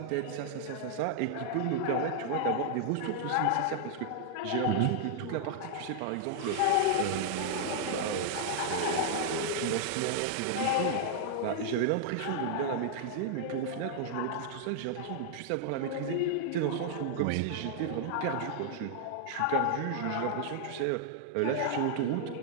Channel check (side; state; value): both; different; correlation -0.01